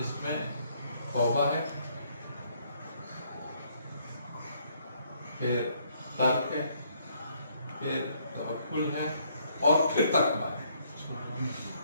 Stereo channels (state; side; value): inverted; both; correlation -0.68